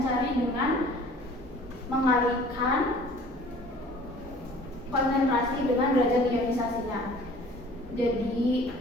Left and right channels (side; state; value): both; normal; correlation 0.49